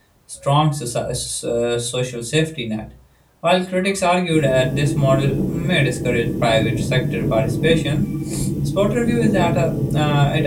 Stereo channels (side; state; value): both; identical; correlation 1.00